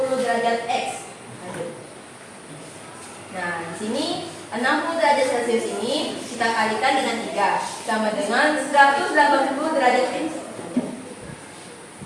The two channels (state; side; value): identical; both; correlation 1.00